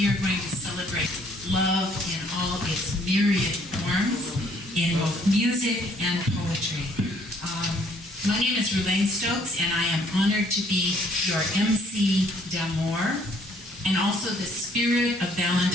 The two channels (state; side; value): normal; both; correlation 0.63